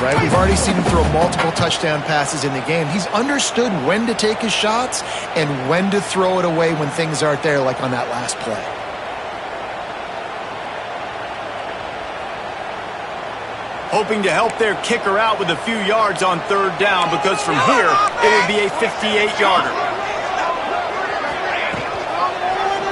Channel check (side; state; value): both; identical; correlation 1.00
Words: right? We've already seen him throw multiple touchdown passes in the game. He's understood when to take his shots and when to throw it away when things aren't there, like on that last play. Hoping to help their kicker out with a few yards on third down, because from here, it would be a 58-yarder.